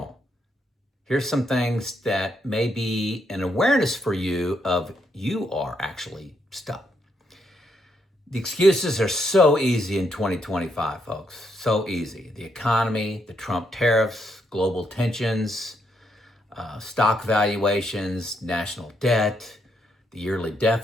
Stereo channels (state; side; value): normal; both; correlation 0.77